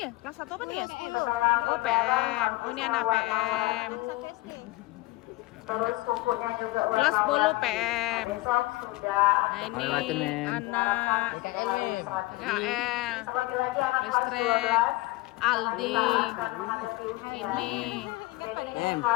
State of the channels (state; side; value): quieter; right; 20.3 dB